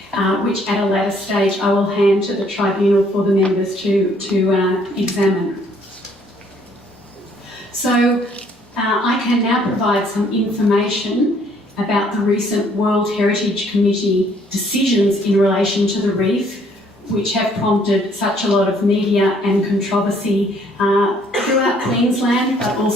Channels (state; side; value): normal; both; correlation 0.63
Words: which at a later stage I will hand to the tribunal for the members to examine. So I can now provide some information about the recent World Heritage Committee decisions in relation to the reef, which have prompted such a lot of media and controversy throughout Queensland, but